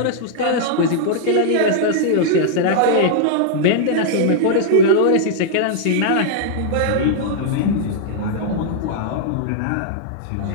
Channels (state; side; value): different; both; correlation -0.01